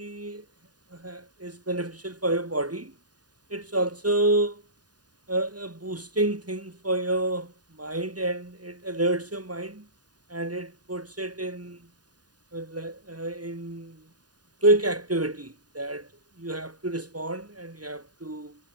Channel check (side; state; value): left; late; 0.69 ms